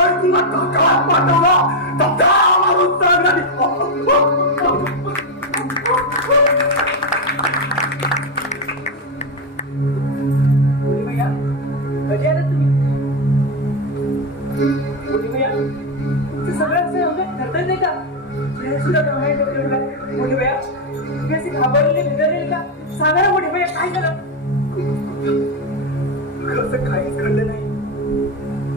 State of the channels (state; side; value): normal; both; correlation 0.08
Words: तुला काकात पाठवला तर मारून सांगणार. कधी आला तुम्ही? सगळ्यांचं ठरत नाही का? सुद्धा मोठी भैया तुम्ही असे घाबरले बिघडले का? सांगा ना मोठी भैया काय झालं? कसं काहीच घडलं नाही.